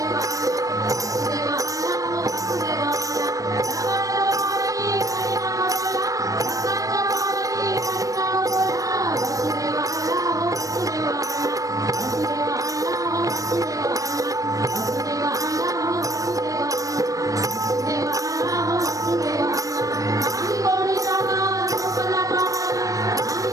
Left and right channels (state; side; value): late; left; 0.16 ms